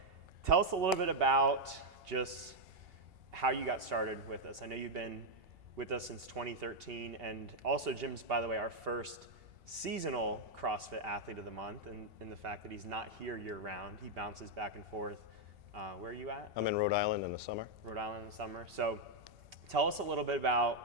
tell us a little bit about just how you got started with us. I know you've been with us since 2013, and also Jim's, by the way, our first seasonal CrossFit athlete of the month, and the fact that he's not here year round. He bounces back and forth. Where are you at? I'm in Rhode Island in the summer. Rhode Island in the summer. So tell us a little bit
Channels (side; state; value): left; late; 2.8 ms